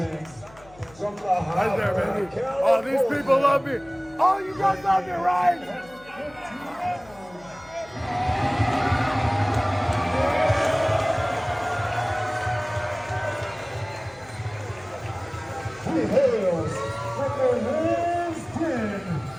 From the Right there, baby. Oh, these people love me. Oh, you guys love me, right? He hails from the Hills Den,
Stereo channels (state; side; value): noise; left; hum, 24 dB below the sound